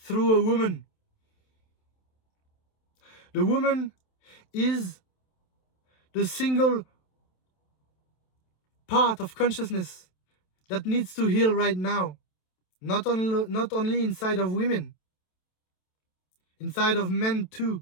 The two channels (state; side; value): late; right; 27 ms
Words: a woman. The woman is the single part of consciousness that needs to heal right now. Not only inside of women, inside of men too.